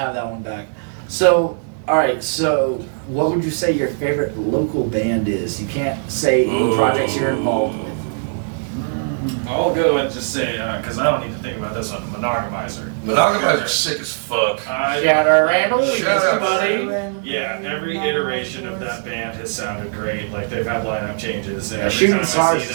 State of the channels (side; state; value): left; silent; digital silence